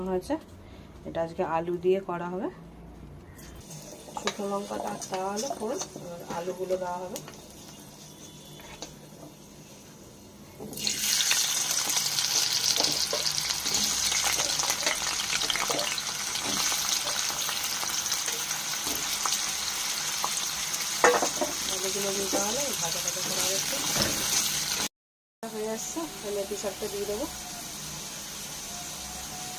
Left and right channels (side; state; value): both; identical; correlation 1.00